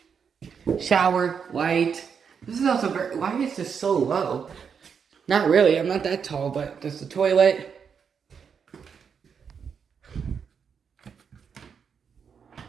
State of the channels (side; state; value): left; quieter; 6.7 dB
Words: shower, light. This is also very, why is this so low? Not really, I'm not that tall, but there's the toilet.